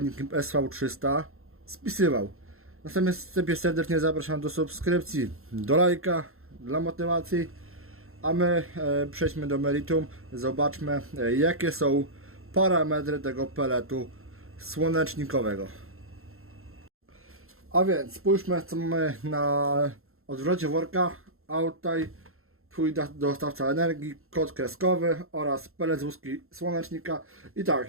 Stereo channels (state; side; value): late; left; 0.62 ms